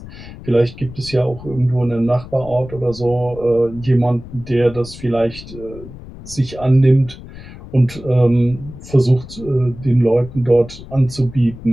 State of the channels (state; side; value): noise; left; rumble, 15 dB below the sound